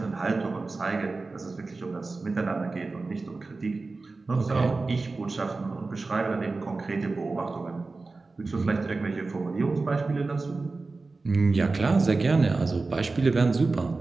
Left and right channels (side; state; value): left; quieter; 3.7 dB